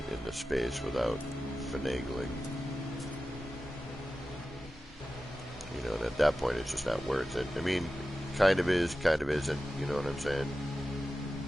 in the space without finagling. And at that point, it's just not worth it. I mean, kind of is, kind of isn't. You know what I'm saying?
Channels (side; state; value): both; normal; correlation 0.94